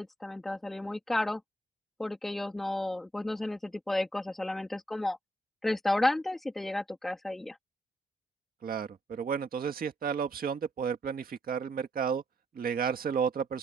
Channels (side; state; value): both; normal; correlation 0.74